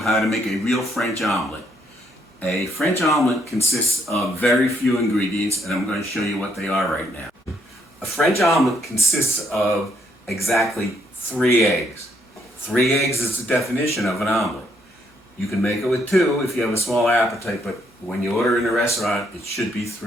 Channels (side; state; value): both; normal; correlation 0.71